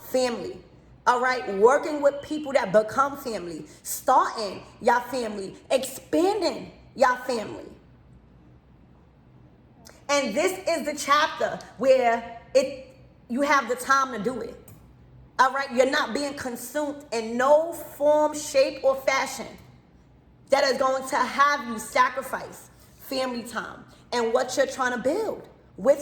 family. All right, working with people that become family, starting your family, expanding your family. And this is the chapter where you have the time to do it. All right, you're not being consumed in no form, shape, or fashion that is going to have you sacrifice family time and what you're trying to build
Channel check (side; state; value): both; identical; correlation 1.00